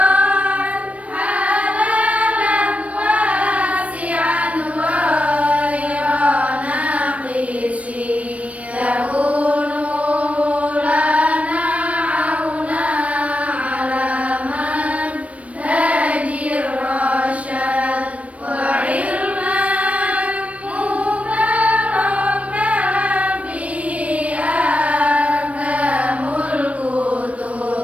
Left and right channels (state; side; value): late; left; 0.065 ms